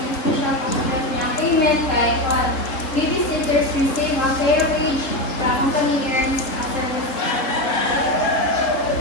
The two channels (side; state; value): right; late; 3.7 ms